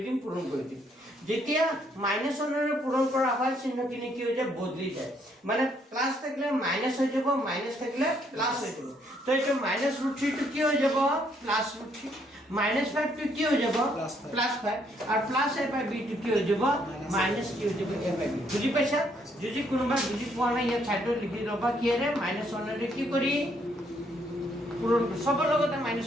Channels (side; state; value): both; normal; correlation 0.70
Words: দিম পূৰণ কৰি দিম যেতিয়া মাইনাস অনৰে পূৰণ কৰা হয় চিহ্নখিনি কি হৈ যায় বদলি যায় মানে প্লাস থাকিলে মাইনাস হৈ যাব মাইনাস থাকিলে প্লাস হৈ যাব তো এটো মাইনাস ৰুট 3 টো কি হৈ যাব প্লাস ৰুট 3 माइनस 5 টো কি হৈ যাব প্লাস 5 আর প্লাস a by b টো কি হৈ যাব মাইনাস কি হৈ যাব a by b বুজি পাইছা যদি কোনোবা বুজি পোৱা নাই ইয়া ছাইডত লিখি লবা কি ৰে মাইনাস 1 ৰে কি কৰি পূৰণ সবৰ লগতে মাইনাস